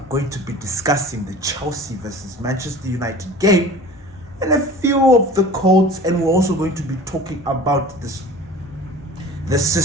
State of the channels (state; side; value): normal; both; correlation 0.41